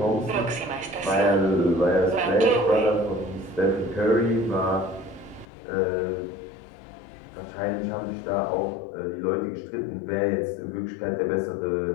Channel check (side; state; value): right; drops out; at 5.5 s